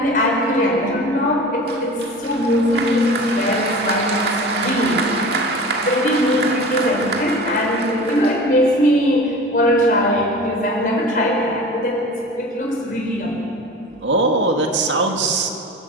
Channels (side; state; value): both; normal; correlation 0.36